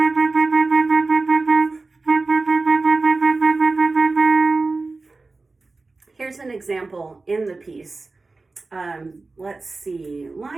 Here's an example in the piece. Let's see,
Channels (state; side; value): quieter; left; 3.6 dB